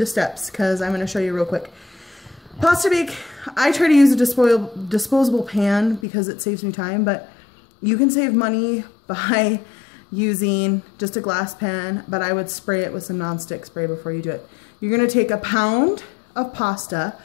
steps because I'm gonna show you real quick. Pasta bake, I try to use a disposable pan because it saves me time, but you can save money by using just a glass pan, but I would spray it with some nonstick spray before you do it. You're gonna take a pound of pasta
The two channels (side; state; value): right; drops out; at 6.1 s